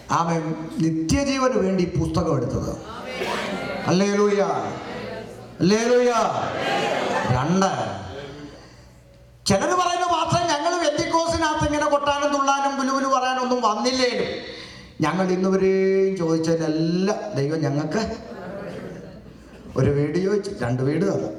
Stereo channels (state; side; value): identical; both; correlation 1.00